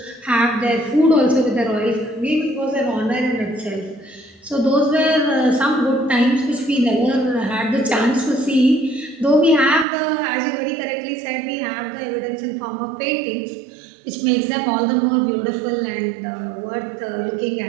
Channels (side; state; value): left; drops out; at 9.9 s